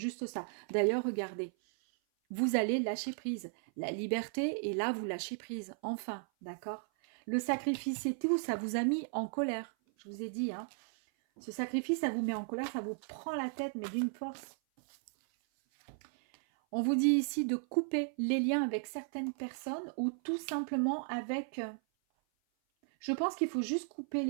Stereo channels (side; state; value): left; silent; 54 dB below the other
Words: ça. D'ailleurs, regardez, vous allez lâcher prise. La liberté, et là, vous lâchez prise. Enfin, d'accord? Le sacrifice et tout, ça vous a mis en colère. Je vous ai dit, hein. Ce sacrifice, ça vous met en colère, ça vous prend la tête, mais d'une force. On vous dit ici de couper les liens avec certaines personnes ou tout simplement avec... Je pense qu'il faut juste couper